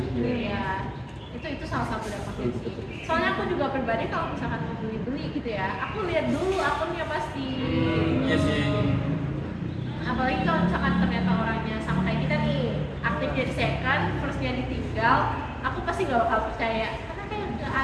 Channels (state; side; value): identical; both; correlation 1.00